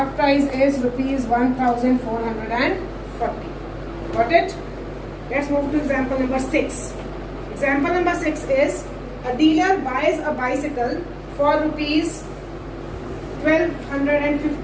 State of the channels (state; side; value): identical; both; correlation 1.00